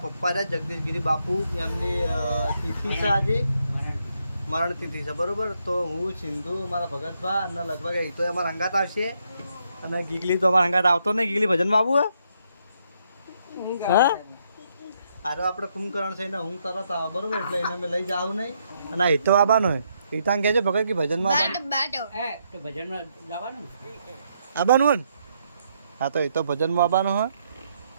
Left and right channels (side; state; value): both; inverted; correlation -0.76